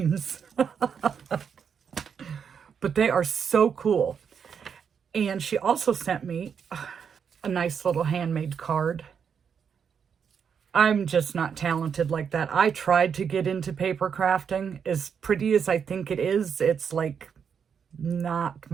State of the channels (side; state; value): left; quieter; 7.0 dB